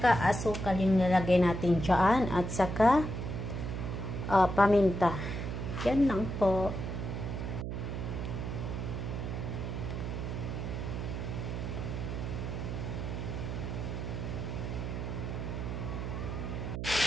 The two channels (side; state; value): right; noise; hum, 4 dB below the sound